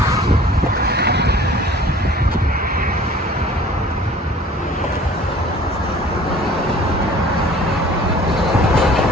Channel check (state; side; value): normal; both; correlation 0.48